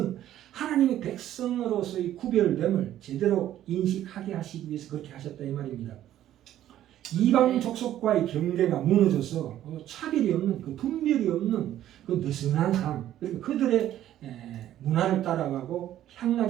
하나님의 백성으로서의 구별됨을 제대로 인식하게 하시기 위해서 그렇게 하셨다 이 말입니다. 이방 족속과의 경계가 무너져서 차별이 없는 그 분별이 없는 그 느슨한 삶, 그러니까 그들의 문화를 따라가고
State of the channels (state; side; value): quieter; left; 12.3 dB